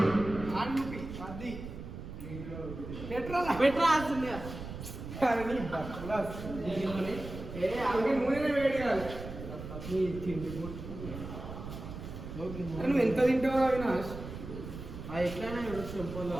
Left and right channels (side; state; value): right; noise; rumble, 10 dB below the sound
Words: ఆన్ముపి అది పెట్టరాల్సింది. అలాగే నూనె వేడి కాదు. నువ్వు ఎంత తింటావు అవినాష్? ఎట్లయినా చెంపలు